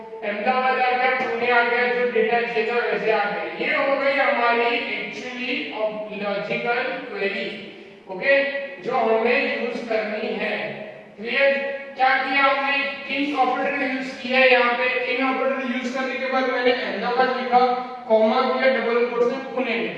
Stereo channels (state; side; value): identical; both; correlation 1.00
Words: अहमदाबाद आ गया, पुणे आ गया, जो डेटा चाहिए था वैसे आ गया। ये हो गई हमारी एक्चुअली लॉजिकल क्वेरी। ओके, जो हमें यूज करनी है। क्लियर? क्या किया हमने, इन ऑपरेटर यूज किया है। यहाँ पे इन ऑपरेटर यूज करने के बाद मैंने अहमदाबाद लिखा, कॉमा किया, डबल कोट्स में पुणे